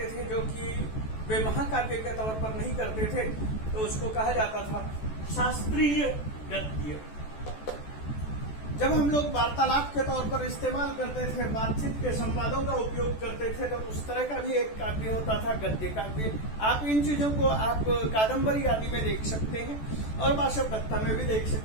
थे, जो कि वे महाकाव्य के तौर पर नहीं करते थे, तो उसको कहा जाता था शास्त्रीय गद्य। जब हम लोग वार्तालाप के तौर पर इस्तेमाल करते थे, बातचीत के संवादों का उपयोग करते थे, तो उस तरह का भी एक काव्य होता था गद्य काव्य। आप इन चीजों को आप कादम्बरी आदि में देख सकते हैं और वाशव दत्ता में भी देख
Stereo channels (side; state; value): right; late; 14 ms